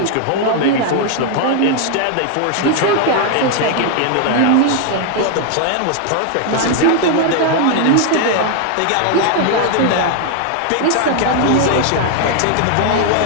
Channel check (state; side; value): different; both; correlation 0.00